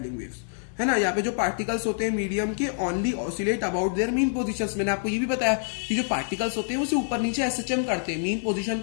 वेव्स, है ना। यहाँ पे जो पार्टिकल्स होते हैं मीडियम के only oscillate about their mean positions. मैंने आपको ये भी बताया कि जो पार्टिकल्स होते हैं वो सिर्फ ऊपर नीचे एसएचएम करते हैं, मीन पोजीशन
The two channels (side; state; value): right; silent; 60 dB below the other